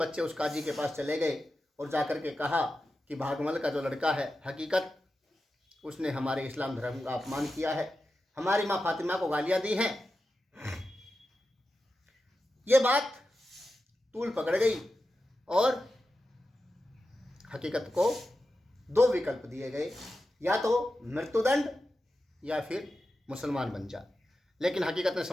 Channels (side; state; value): both; normal; correlation 0.91